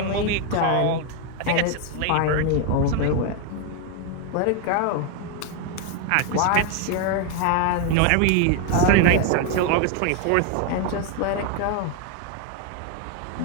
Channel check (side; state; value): both; different; correlation 0.01